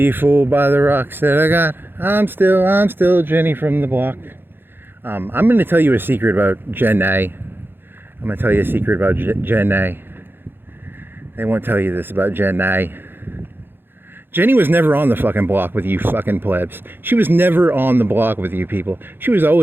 fooled by the rocks that I got. I'm still Jenny from the block. I'm going to tell you a secret about Jen A. I'm going to tell you a secret about Jen A. They won't tell you this about Jen A. Jenny was never on the fucking block with you fucking plebs. She was never on the block with you people. She was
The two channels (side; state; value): left; late; 0.10 ms